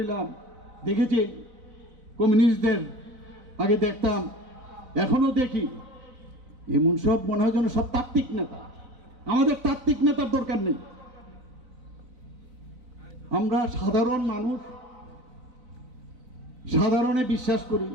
দেখেছি কমিউনিস্টদের আগে দেখতাম, এখনো দেখি, এমন সব মনে হয় যেন সব তাত্ত্বিক নেতা। আমাদের তাত্ত্বিক নেতার দরকার নেই। আমরা সাধারণ মানুষ, সাধারণে বিশ্বাস করি,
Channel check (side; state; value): left; late; 4.0 ms